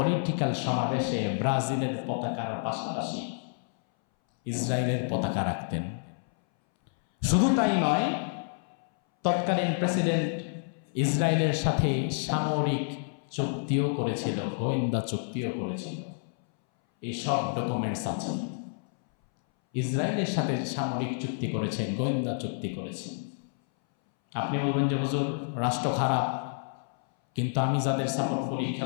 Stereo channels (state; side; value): silent; right; 59 dB below the other